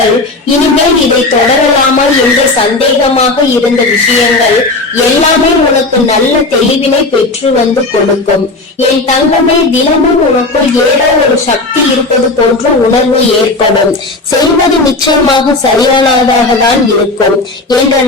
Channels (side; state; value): right; quieter; 3.1 dB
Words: இனிமேல் இதை தொடரலாமா என்று சந்தேகமாக இருந்த விஷயங்கள் எல்லாமே உனக்கு நல்ல தெளிவினை பெற்று வந்து கொடுக்கும். என் தங்கமே, தினமும் உனக்குள் ஏதோ ஒரு சக்தி இருப்பது போன்ற உணர்வு ஏற்படும். செய்வது நிச்சயமாக சரியானதாக தான் இருக்கும் என்ற